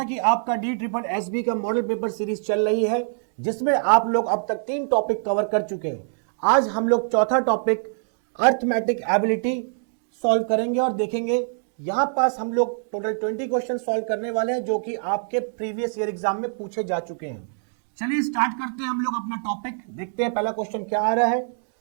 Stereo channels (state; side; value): silent; left; digital silence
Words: कि आपका DSSB का मॉडल पेपर सीरीज चल रही है जिसमें आप लोग अब तक 3 टॉपिक कवर कर चुके हैं। आज हम लोग चौथा टॉपिक अर्थमेटिक एबिलिटी सॉल्व करेंगे और देखेंगे। यहां पास हम लोग टोटल 20 क्वेश्चन सॉल्व करने वाले हैं जो कि आपके प्रीवियस ईयर एग्जाम में पूछे जा चुके हैं। चलिए स्टार्ट करते हैं हम लोग अपना टॉपिक। देखते हैं पहला क्वेश्चन क्या आ रहा है।